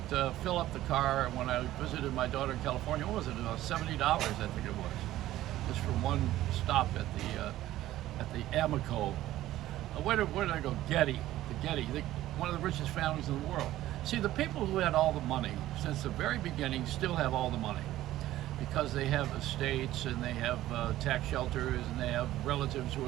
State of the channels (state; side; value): quieter; left; 14.6 dB